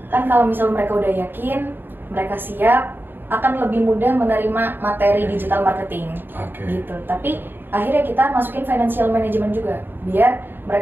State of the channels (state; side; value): late; left; 0.096 ms